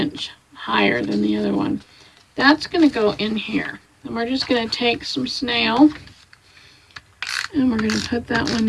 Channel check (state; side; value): identical; both; correlation 1.00